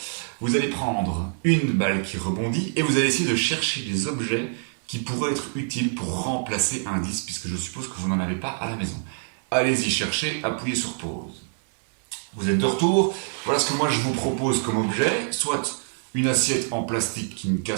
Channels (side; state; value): left; silent; 62 dB below the other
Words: Vous allez prendre une balle qui rebondit et vous allez essayer de chercher des objets qui pourraient être utiles pour remplacer un disque, puisque je suppose que vous n'en avez pas à la maison. Allez-y chercher, appuyez sur pause. Vous êtes de retour, voilà ce que moi je vous propose comme objet, soit une assiette en plastique qui ne